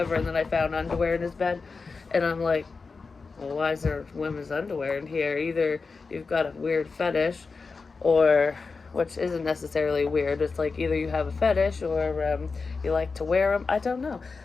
And then I found underwear in his bed, and I'm like, well, why is there women's underwear in here? Either you've got a weird fetish, or, which isn't necessarily weird, it's like either you have a fetish or you like to wear them. I don't know.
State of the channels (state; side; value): quieter; right; 4.5 dB